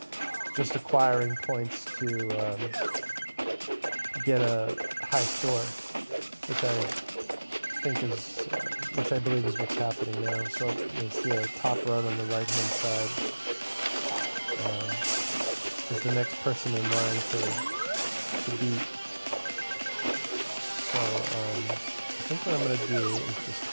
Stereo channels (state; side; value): inverted; both; correlation -1.00